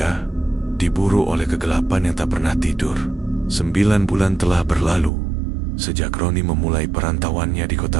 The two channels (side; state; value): left; drops out; at 5.1 s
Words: diburu oleh kegelapan yang tak pernah tidur. 9 bulan telah berlalu sejak Roni memulai perantauannya di